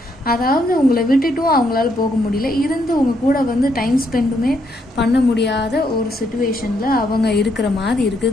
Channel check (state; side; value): normal; both; correlation 0.75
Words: அதாவது உங்களை விட்டுட்டும் அவங்களால போக முடியல, இருந்து உங்க கூட வந்து டைம் ஸ்பெண்டுமே பண்ண முடியாத ஒரு சுச்சுவேஷனில் அவங்க இருக்கிற மாதிரி